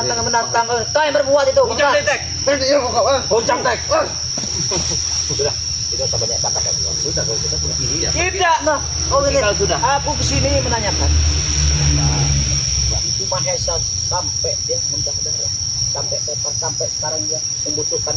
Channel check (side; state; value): both; identical; correlation 1.00